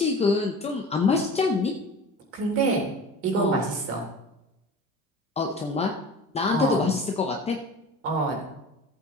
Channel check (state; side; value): normal; both; correlation 0.38